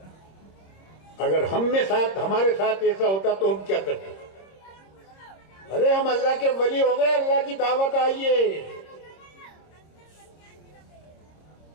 अगर हमारे साथ ऐसा होता तो हम क्या करते? अरे हम अल्लाह के वली हो गए, अल्लाह की दावत आई है।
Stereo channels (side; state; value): right; late; 26 ms